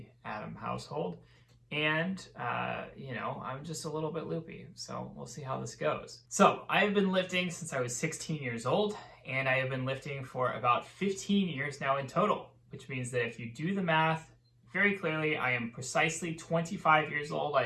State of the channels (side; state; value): both; identical; correlation 1.00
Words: Adam household. And, I'm just a little bit loopy, so we'll see how this goes. So I have been lifting since I was 16 years old, and I have been lifting for about 15 years now in total, which means that if you do the math, very clearly, I am precisely 25 years old. I